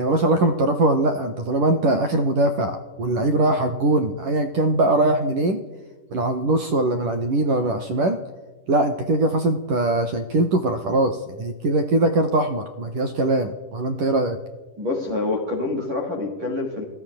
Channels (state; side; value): late; left; 10 ms